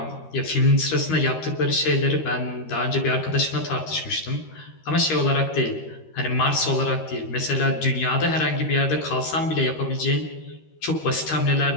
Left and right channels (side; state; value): right; late; 13 ms